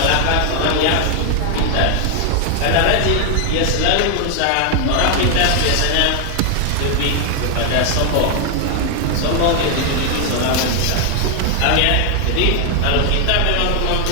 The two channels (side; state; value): both; different; correlation 0.00